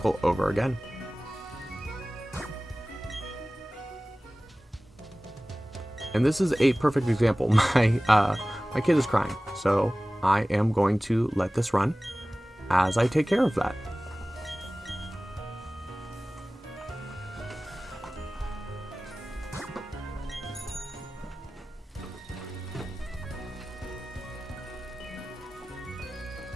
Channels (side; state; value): both; normal; correlation 0.97